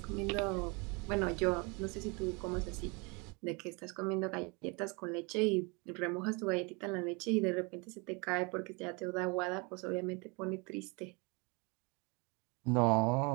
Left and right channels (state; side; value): quieter; left; 29.8 dB